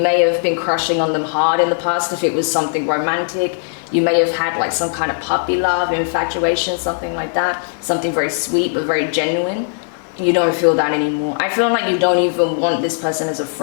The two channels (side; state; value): right; silent; digital silence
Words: have been crushing on them hard in the past if it was something romantic. You may have had like some kind of puppy love, infatuation, something like that. Something very sweet but very genuine. You don't feel that anymore. I feel like you don't even want this person as a